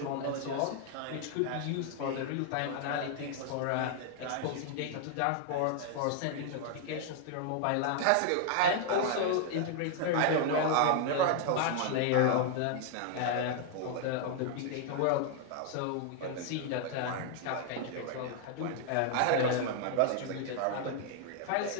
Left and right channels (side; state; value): both; different; correlation 0.00